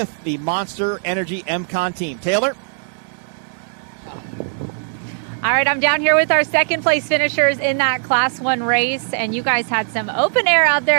the Monster Energy MCon team. Taylor. All right, I'm down here with our second place finishers in that Class 1 race, and you guys had some open air out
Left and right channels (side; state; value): left; silent; digital silence